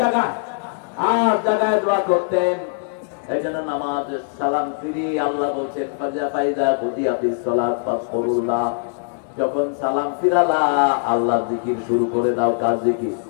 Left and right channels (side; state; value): right; silent; digital silence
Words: জায়গায় 8 জায়গায় দোয়া করতেন। এইজন্য নামাজে সালাম ফিরি আল্লাহ বলেন ফাজা ফাইদা বুদিয়াতিস সালাত ফাসকুরুল্লাহ, যখন সালাম ফিরালা আল্লাহর জিকির শুরু করে দাও। কার জিকির?